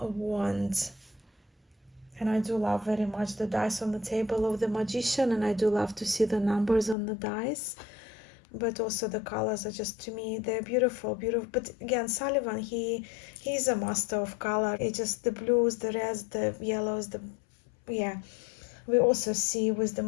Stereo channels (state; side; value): drops out; right; at 7.0 s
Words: wand. And I do love very much the dice on the table of the magician, and I do love to see the numbers on the dice. But also the colors are just, to me, they're beautiful. But again, Sullivan, he's a master of color. It's just the blues, the reds, the yellows, yeah. We also see with the